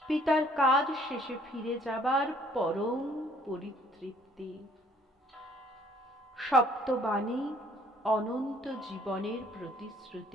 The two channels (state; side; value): normal; both; correlation 0.60